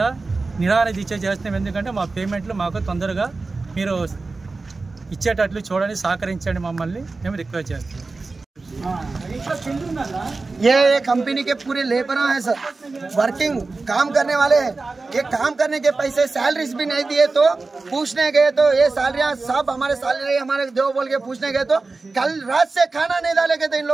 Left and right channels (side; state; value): left; quieter; 3.7 dB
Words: నిరాహార దీక్ష చేస్తున్నాం. ఎందుకంటే మా పేమెంట్లు మాకు తొందరగా మీరు ఇచ్చేటట్లు చూడండి, సహకరించండి మమ్మల్ని మేము రిక్వెస్ట్ చేస్తున్నాం. ये कंपनी के पूरे लेबर हैं सर, वर्किंग काम करने वाले। ये काम करने के पैसे सैलरीज भी नहीं दिए तो पूछने गए तो ये सैलरियां सब हमारे सैलरी हमारे दो बोल के पूछने गए तो कल रात से खाना नहीं डाले गए थे इन